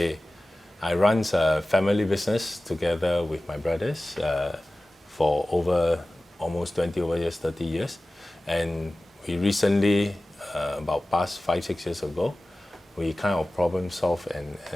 run a family business together with my brothers for over almost 20 over years, 30 years. And we recently, about past 5-6 years ago, we kind of problem solve and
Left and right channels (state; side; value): normal; both; correlation 0.97